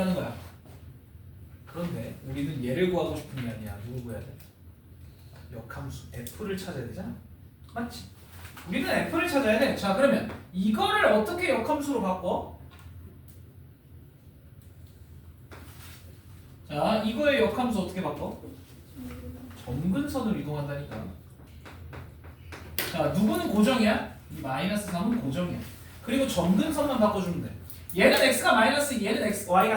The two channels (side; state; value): both; identical; correlation 1.00